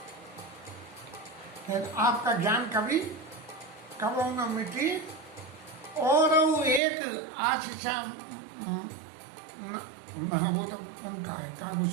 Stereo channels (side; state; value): left; drops out; at 6.8 s